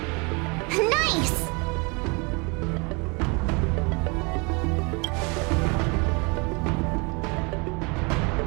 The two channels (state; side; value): quieter; left; 30.4 dB